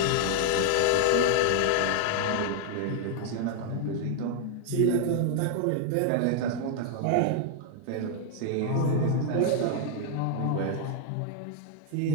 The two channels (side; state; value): both; different; correlation 0.00